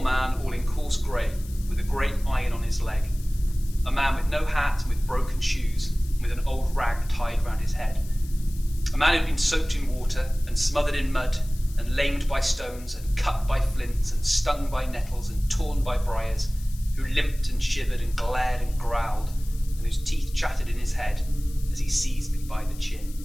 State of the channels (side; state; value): left; noise; hiss, 20 dB below the sound